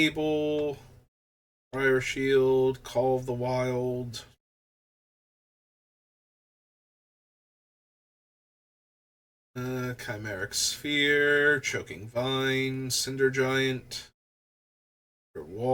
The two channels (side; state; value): both; identical; correlation 1.00